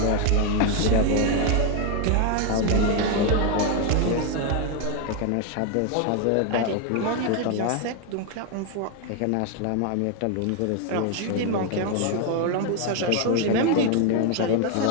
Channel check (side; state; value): both; different; correlation 0.01